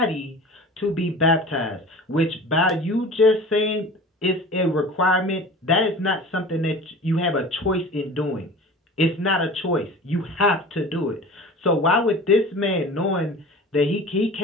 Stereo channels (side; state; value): both; normal; correlation 0.38